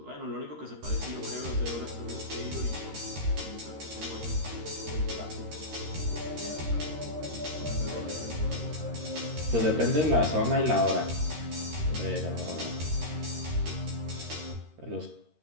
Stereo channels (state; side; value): late; left; 13 ms